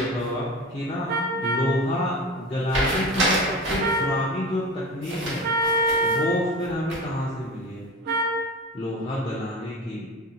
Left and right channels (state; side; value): normal; both; correlation 0.31